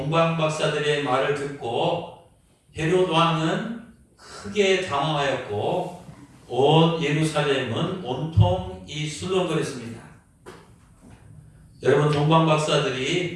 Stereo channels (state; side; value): identical; both; correlation 1.00